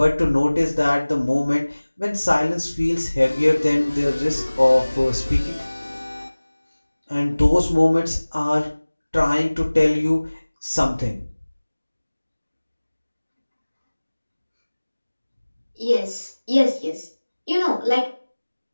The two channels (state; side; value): inverted; both; correlation -1.00